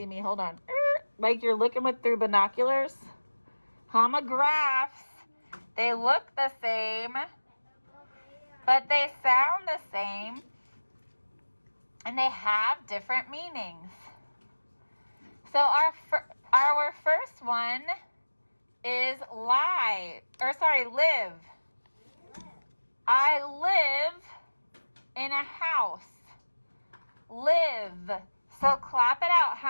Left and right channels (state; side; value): inverted; both; correlation -1.00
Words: me, hold on. Like you're looking through binoculars. Homographs, they look the same, but they sound the same, and they have different meanings. So our first one is live. I live in a house. Live. So clap it out.